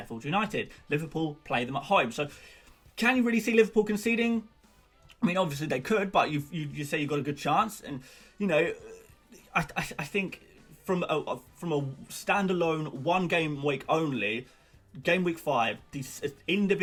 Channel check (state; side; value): identical; both; correlation 1.00